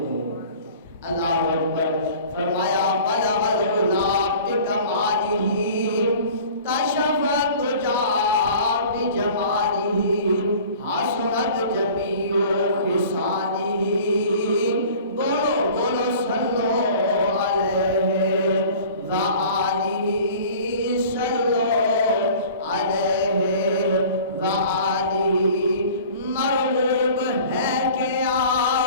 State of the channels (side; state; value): both; inverted; correlation -0.45